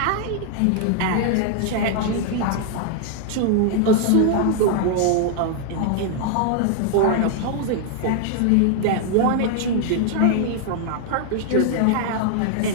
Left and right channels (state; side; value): different; both; correlation 0.00